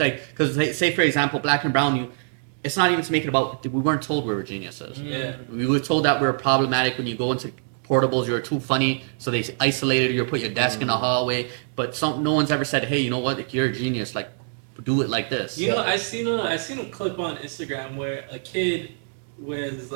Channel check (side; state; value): left; silent; digital silence